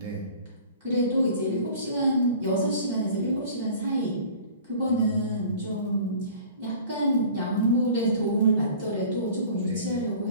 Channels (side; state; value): both; inverted; correlation -0.45